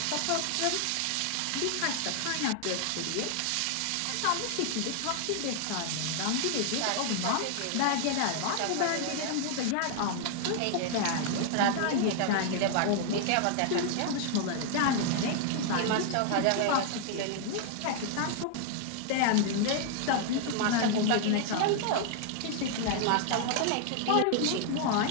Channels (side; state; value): both; different; correlation 0.00